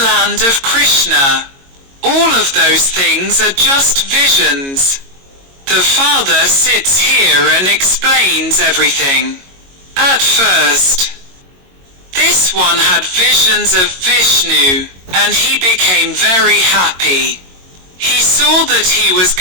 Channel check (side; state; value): left; late; 22 ms